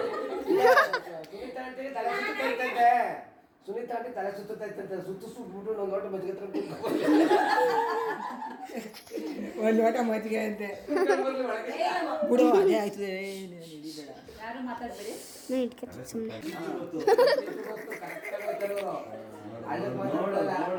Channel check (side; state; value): both; identical; correlation 1.00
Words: ಸುನೀತಾ ಆಂಟಿ ತಲೆ ಸುತ್ತೈತಂತೆ ಸುತ್ತಬಿಟ್ಟು ಒಂದು ಲೋಟ ಮಜ್ಜಿಗೆ ಒಂದು ಲೋಟ ಮಜ್ಜಿಗೆ ಅಂತೆ ಬಿಡು ಅದೇ ಆಯ್ತದೆ ಯಾರು ಮಾತಾಡ್ಬೇಡಿ ನಾನು ಇಟ್ಕೊತೀನಿ ಸುಮ್ಮನೆ